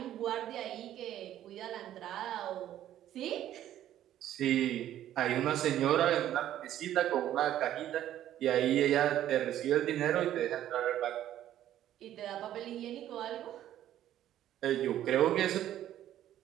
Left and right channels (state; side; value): quieter; left; 12.1 dB